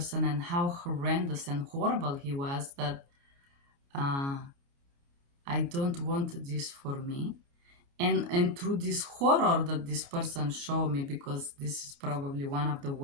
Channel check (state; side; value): late; left; 29 ms